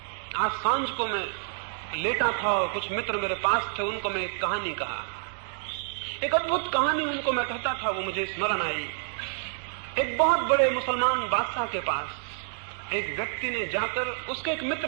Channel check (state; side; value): silent; left; 59 dB below the other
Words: आज सांझ को मैं लेटा था और कुछ मित्र मेरे पास थे, उनको मैं एक कहानी कहा, एक अद्भुत कहानी उनको मैं कहता था, वो मुझे स्मरण आई। एक बहुत बड़े मुसलमान बादशाह के पास एक व्यक्ति ने जाकर, उसके एक